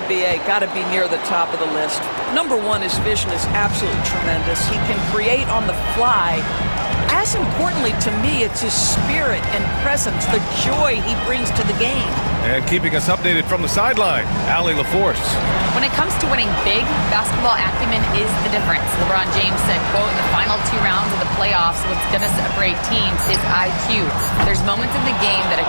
B.A., got to be near the top of the list. Number one, his vision is absolutely tremendous. He can create on the fly. As importantly to me, it's his spirit and presence, the joy he brings to the game. And keeping us updated from the sideline, Allie LaForce. When it comes to winning big, basketball acumen is the difference. LeBron James said, quote, in the final 2 rounds of the playoffs, what's going to separate teams is IQ. There's moments in the game that a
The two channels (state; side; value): inverted; both; correlation -1.00